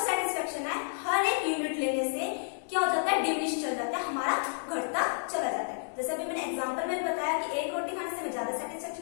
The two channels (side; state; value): right; silent; digital silence